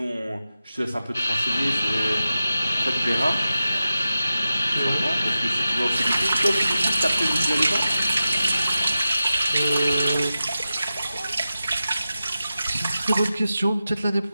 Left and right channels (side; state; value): both; inverted; correlation -0.93